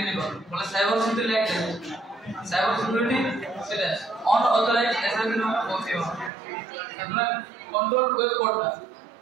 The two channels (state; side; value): drops out; left; at 6.3 s